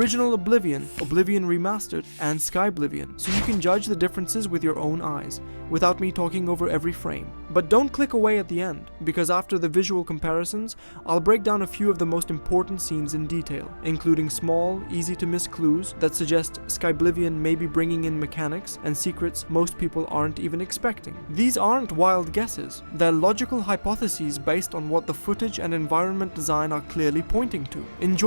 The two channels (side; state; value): both; inverted; correlation -1.00